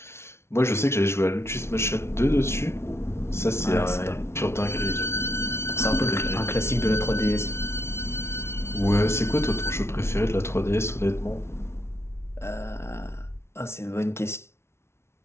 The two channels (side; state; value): right; late; 0.13 ms